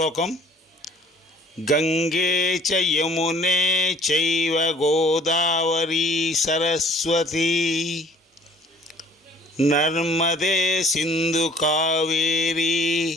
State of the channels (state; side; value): normal; both; correlation 0.54